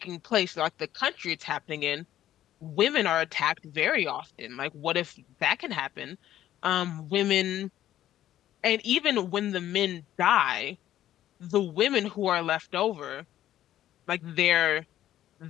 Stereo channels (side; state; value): right; quieter; 12.5 dB